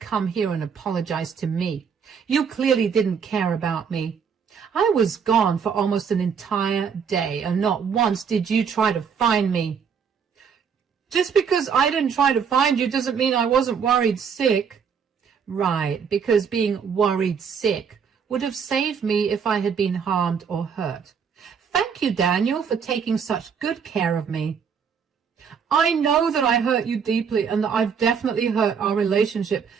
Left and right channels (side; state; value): left; quieter; 6.7 dB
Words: here and apologize to me? You clearly didn't care about me. I was gone for almost an entire day, and not once did you try to find me. Just because I didn't try to find you doesn't mean I wasn't worried sick. Right, because being worried sick would have saved me if I had been harmed or hurt. Thank you, Daniel, for taking such good care of me. I know that I hurt you deeply and that I've definitely hurt our relationship,